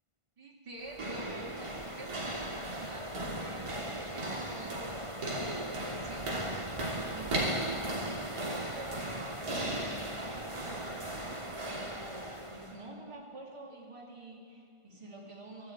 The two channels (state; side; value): late; left; 1.5 ms